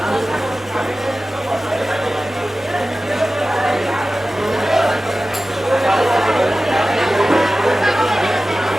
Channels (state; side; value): normal; both; correlation 0.95